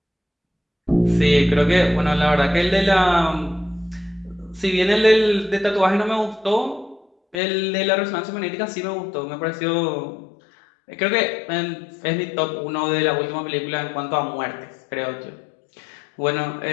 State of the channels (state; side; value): drops out; right; at 7.4 s